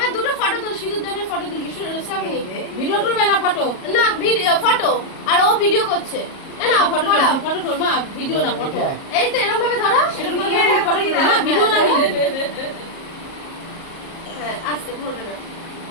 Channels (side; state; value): right; late; 37 ms